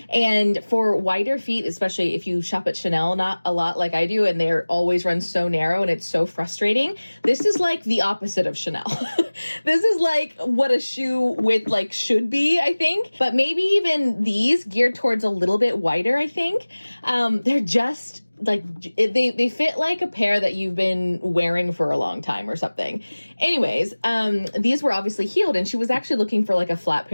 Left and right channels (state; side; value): inverted; both; correlation -1.00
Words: And for wider feet, especially if you shop at Chanel not a lot like I do, and they're always run so narrow and it's so frustrating, this is like the opposite of Chanel. This is like what a shoe width like should be, I think. But maybe even these geared towards a little bit wider, I think. They're just like they fit like a pair that you've been wearing for a long time or something. Anyways, these were obviously heeled, and she was actually looking for like a flat